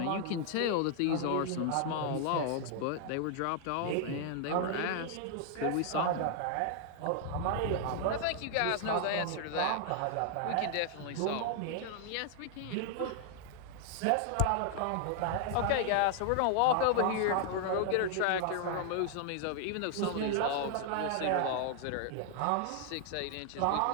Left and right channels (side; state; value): both; different; correlation 0.00